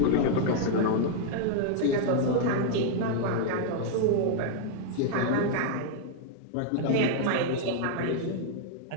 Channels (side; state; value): both; different; correlation -0.01